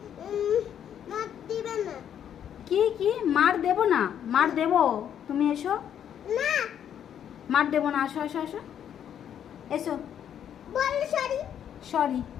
মার দিবে না। কি কি মার দেব না? মার দেব, তুমি এসো। না মার দেব না, আসো আসো আসো, এসো। বল সরি। সরি,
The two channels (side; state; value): right; quieter; 9.4 dB